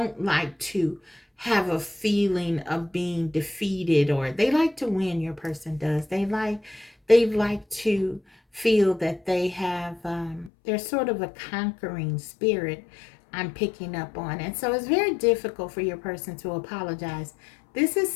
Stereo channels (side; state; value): right; drops out; at 10.5 s